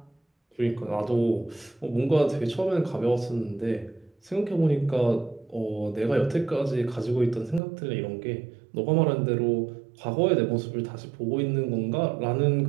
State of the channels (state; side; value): drops out; left; at 7.6 s